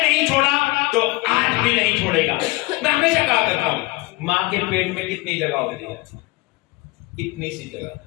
छोड़ा तो आज भी नहीं छोड़ेगा। मैं हमेशा कहा करता हूं, मां के पेट में कितनी जगह होती है? इतनी सी जगह,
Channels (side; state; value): right; quieter; 22.2 dB